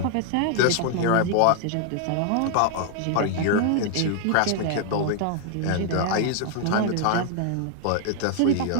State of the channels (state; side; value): different; both; correlation 0.00